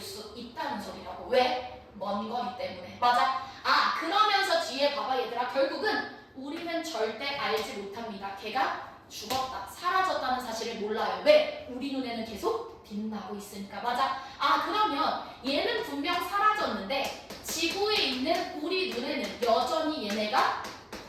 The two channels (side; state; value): both; identical; correlation 1.00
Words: 있다는 소리라고. 왜? 먼 거리 때문에. 맞아? 그러면서 뒤에 봐봐 얘들아. 결국은 우리는 절대 알지 못합니다. 걔가 죽었다, 사라졌다는 사실을 몰라요. 왜? 우리 눈에는 계속 빛나고 있으니까. 맞아? 그러면 얘는 분명 사라졌는데 지구에 있는 우리 눈에는 여전히 얘네가